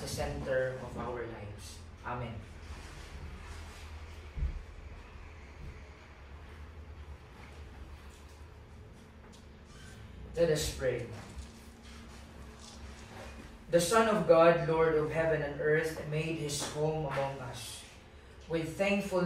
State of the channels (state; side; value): identical; both; correlation 1.00